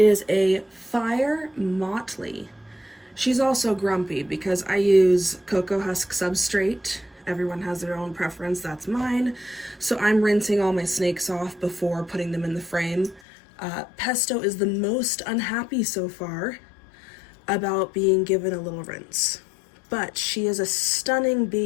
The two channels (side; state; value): right; drops out; at 13.2 s